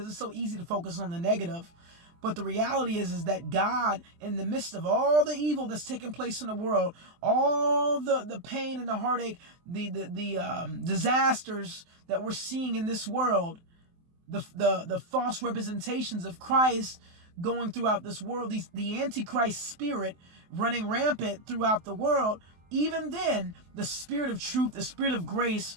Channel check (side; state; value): left; late; 23 ms